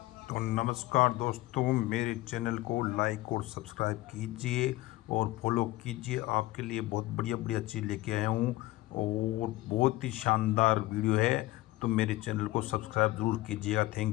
तो नमस्कार दोस्तों, मेरे चैनल को लाइक और सब्सक्राइब कीजिए और फॉलो कीजिए। आपके लिए बहुत बढ़िया बढ़िया चीज़ लेके आया हूँ और बहुत ही शानदार वीडियो है, तो मेरे चैनल को सब्सक्राइब ज़रूर कीजिएगा।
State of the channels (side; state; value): right; quieter; 18.2 dB